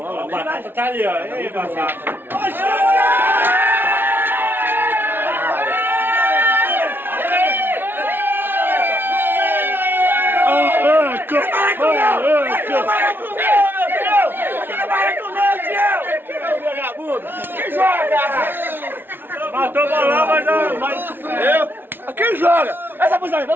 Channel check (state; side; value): late; left; 0.10 ms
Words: né? Batata tá ali, ó. Ei, batata. Quem joga? Matou o bolão, mas eu. Quem joga? Essa posição aí,